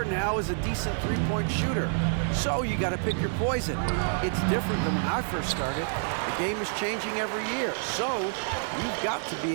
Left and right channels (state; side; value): silent; left; digital silence